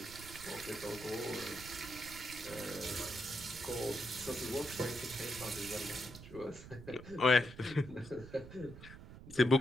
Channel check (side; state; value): right; noise; rumble, 15 dB below the sound